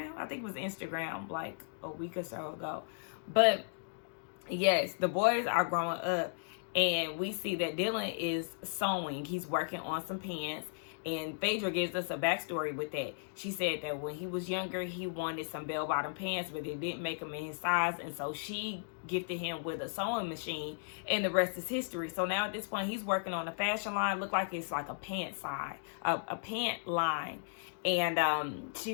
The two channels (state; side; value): silent; right; digital silence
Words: I think it was Instagram like a week or so ago. But yes, the boys are growing up, and we see that Dylan is sewing. He's working on some pants, And Phaedra gives us a backstory with that. She said that when he was younger, he wanted some bell-bottom pants, but they didn't make them in his size. And so she gifted him with a sewing machine, and the rest is history. So now at this point, he's working on a fashion line. Look like it's like a pant line. And